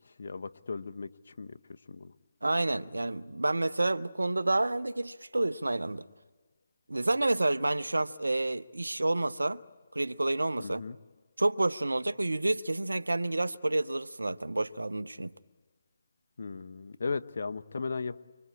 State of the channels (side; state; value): both; inverted; correlation -0.98